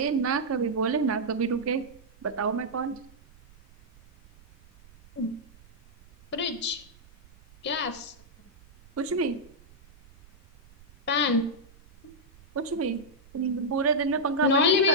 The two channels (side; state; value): right; noise; rumble, 25 dB below the sound